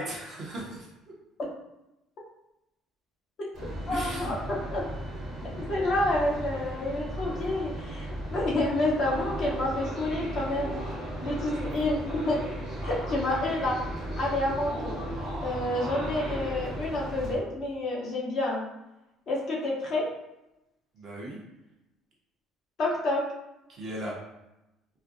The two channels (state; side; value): normal; both; correlation 0.68